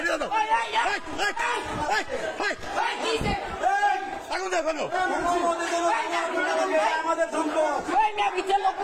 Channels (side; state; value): both; identical; correlation 1.00